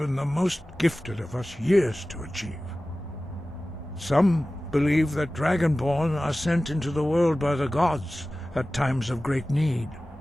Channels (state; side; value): normal; both; correlation 0.96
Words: the most gifted of us years to achieve. Some believe that Dragonborn are sent into the world by the gods at times of great need.